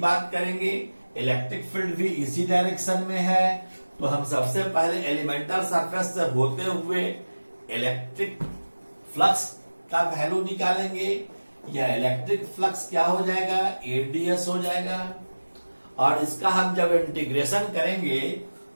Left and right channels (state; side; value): inverted; both; correlation -1.00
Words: करेंगे। इलेक्ट्रिक फील्ड भी इसी डायरेक्शन में है, तो हम सबसे पहले एलिमेंटल सरफेस से होते हुए इलेक्ट्रिक फ्लक्स का वैल्यू निकालेंगे। यह इलेक्ट्रिक फ्लक्स क्या हो जाएगा? AdS हो जाएगा। और इसका हम जब इंटीग्रेशन करेंगे,